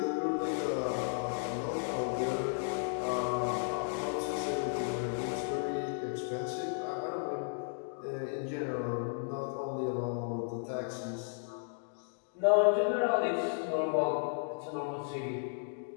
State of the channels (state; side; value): silent; right; digital silence